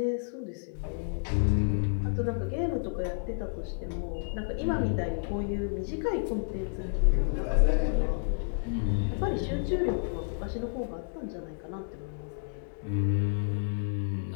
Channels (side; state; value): right; silent; digital silence